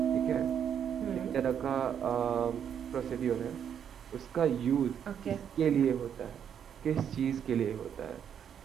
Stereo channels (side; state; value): left; quieter; 8.5 dB